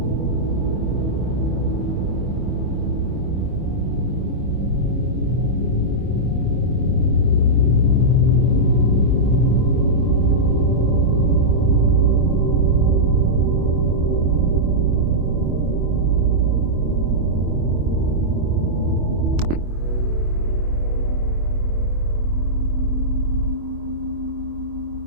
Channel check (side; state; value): left; late; 25 ms